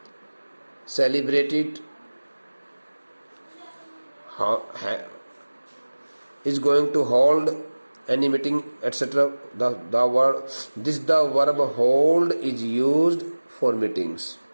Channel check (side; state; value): both; inverted; correlation -1.00